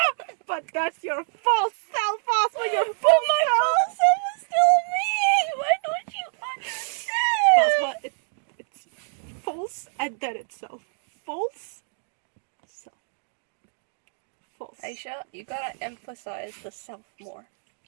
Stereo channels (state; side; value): silent; left; digital silence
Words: But that's your false self, Asma. Your But my false self is still me. Why don't you understand? Asma, it's false and then itself. False. Self. False. Aisha, you gotta emphasize the self more.